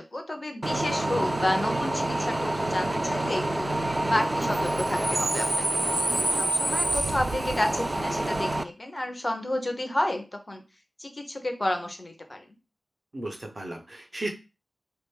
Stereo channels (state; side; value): normal; both; correlation 0.97